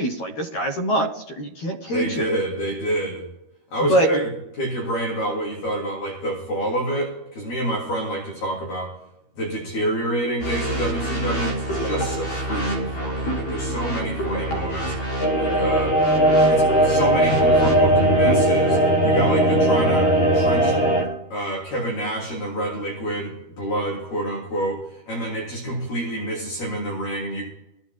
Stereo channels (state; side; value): late; right; 13 ms